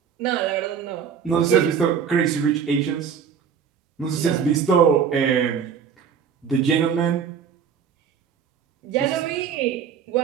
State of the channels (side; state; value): left; quieter; 7.3 dB